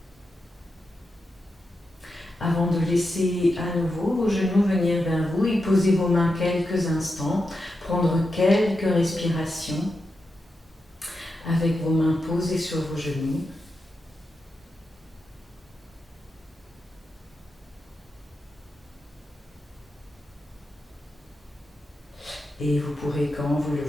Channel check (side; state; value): both; normal; correlation 0.88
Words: avant de laisser à nouveau vos genoux venir vers vous et poser vos mains quelques instants, prendre quelques respirations avec vos mains posées sur vos genoux. Et vous pourrez, quand vous le